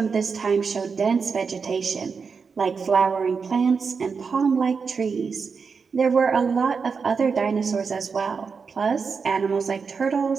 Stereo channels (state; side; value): quieter; left; 5.4 dB